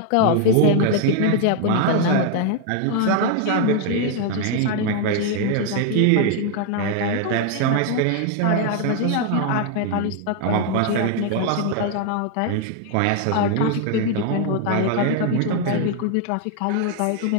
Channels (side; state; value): both; different; correlation 0.00